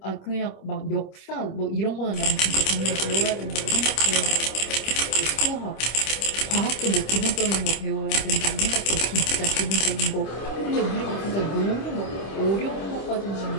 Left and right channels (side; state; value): right; late; 26 ms